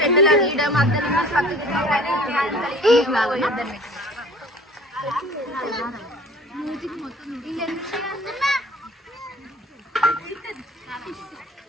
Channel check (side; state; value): both; normal; correlation 0.47